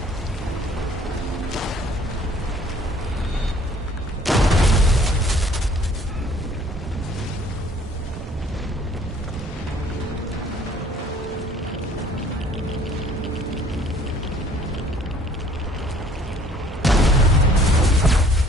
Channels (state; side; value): normal; both; correlation 0.56